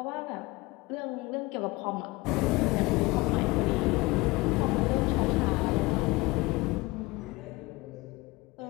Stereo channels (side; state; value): right; quieter; 22.5 dB